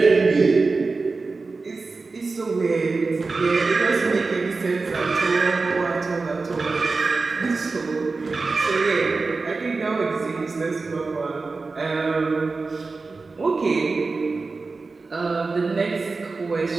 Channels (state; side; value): quieter; left; 4.0 dB